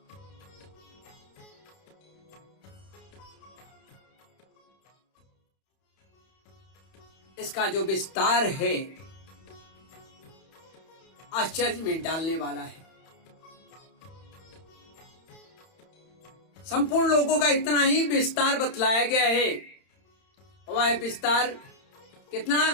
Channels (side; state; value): right; late; 31 ms